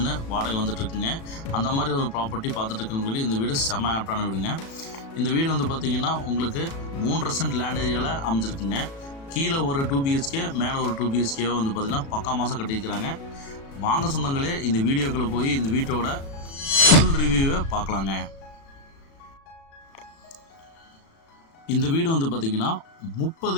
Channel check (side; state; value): right; late; 36 ms